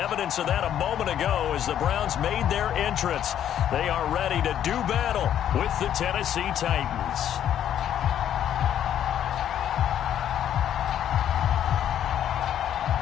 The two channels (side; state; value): right; quieter; 10.3 dB